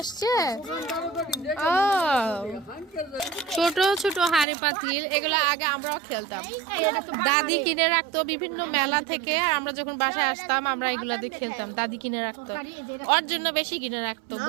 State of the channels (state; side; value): drops out; left; at 4.5 s